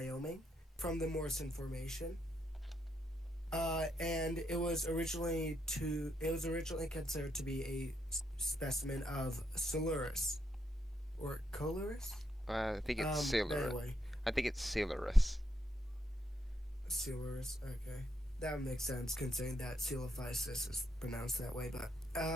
from the Morrison Formation. And it was originally considered to be a specimen of Silurus or Colurus. I think it's But Silurus. anyway, I think it's Silurus. Silurus. Okay, that would make sense considering that Coelophysis is pronounced that way. But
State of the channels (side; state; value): both; normal; correlation 0.78